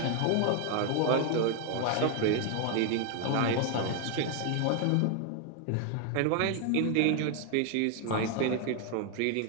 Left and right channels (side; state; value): both; different; correlation 0.00